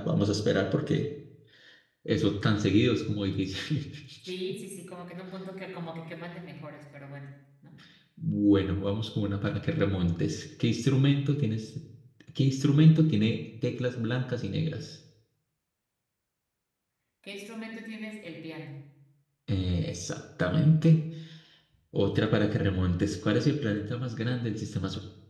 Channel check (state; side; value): identical; both; correlation 1.00